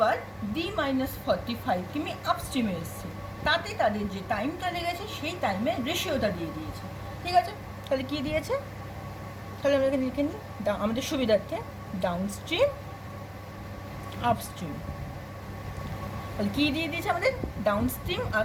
d-45 কিমি আপস্ট্রিমে এসছে, তাতে তাদের যে টাইমটা লেগেছে সেই টাইমের রেশিওটা দিয়ে দিয়েছে। ঠিক আছে, তাহলে কী দিয়েছে, তাহলে আমরা এখানে লিখে নিই আমাদের সুবিধার্থে, ডাউনস্ট্রিম আপস্ট্রিম। তাহলে কী দিয়ে দিয়েছে আমাদের, ডাউনস্ট্রিম আর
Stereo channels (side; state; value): both; identical; correlation 1.00